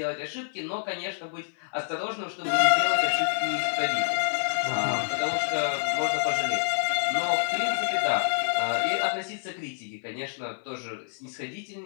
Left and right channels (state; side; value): silent; right; 56 dB below the other